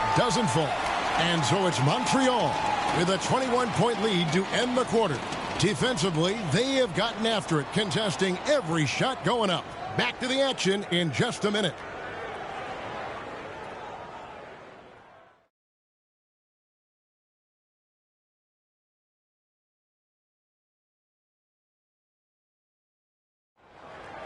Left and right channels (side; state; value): both; identical; correlation 1.00